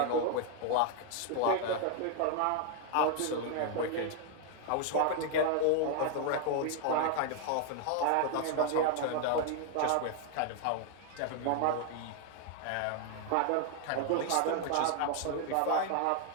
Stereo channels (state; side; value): different; both; correlation 0.00